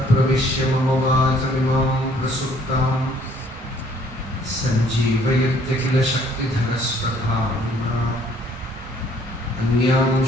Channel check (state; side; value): normal; both; correlation 0.60